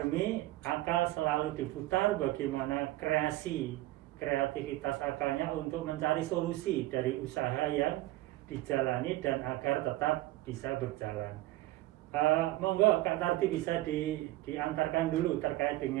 akal selalu diputar bagaimana kreativitas akalnya untuk mencari solusi dari usaha yang dijalani dan agar tetap bisa berjalan. Monggo Kak Tardi bisa diantarkan dulu terkait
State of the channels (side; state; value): left; quieter; 16.9 dB